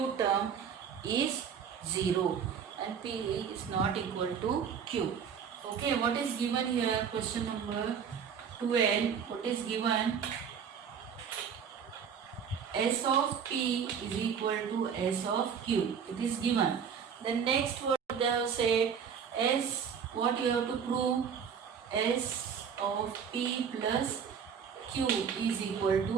term is 0 and P is not equal to Q. Okay, what is given here? Question number 12. What is given? S of P is equal to S of Q. It is given. Then next what they have said, S, what you have to prove? S of P plus Q is equal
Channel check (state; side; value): quieter; left; 7.2 dB